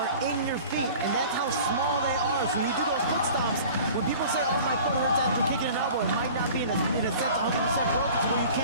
in your feet, and that's how small they are. So when you do those foot stomps, when people say, oh, my foot hurts after kicking an elbow, it might not be in a sense 100% focused where you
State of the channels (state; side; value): inverted; both; correlation -0.44